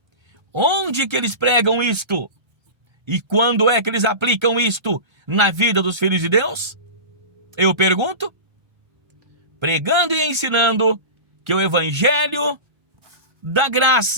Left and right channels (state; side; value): late; left; 1.3 ms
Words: Onde que eles pregam isto? E quando é que eles aplicam isto na vida dos filhos de Deus? Eu pergunto. Pregando e ensinando que o evangelho da